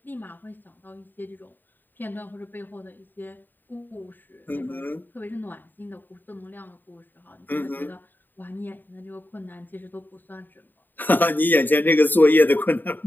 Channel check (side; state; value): right; late; 0.091 ms